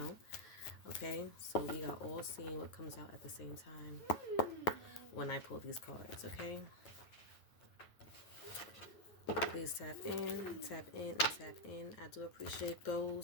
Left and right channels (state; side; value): late; right; 9.1 ms